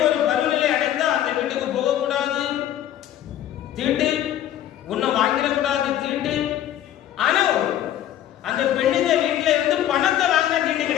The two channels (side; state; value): right; quieter; 11.7 dB